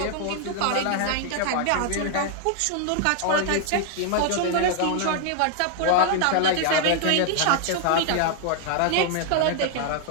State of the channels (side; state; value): both; different; correlation 0.00